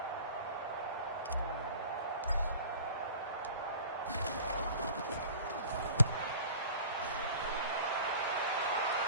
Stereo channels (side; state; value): both; inverted; correlation -0.43